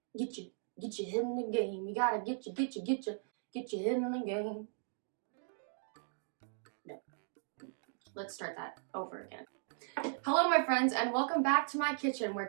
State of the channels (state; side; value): silent; left; digital silence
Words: Get your head in the game. You gotta get your head in the game. No. Let's start that over again. Hello my friends and welcome back to my kitchen where